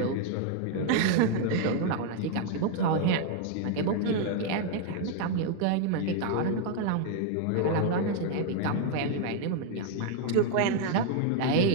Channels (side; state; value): both; different; correlation 0.01